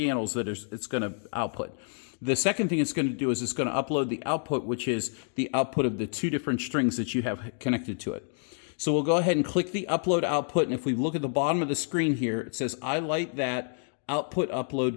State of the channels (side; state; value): right; silent; 59 dB below the other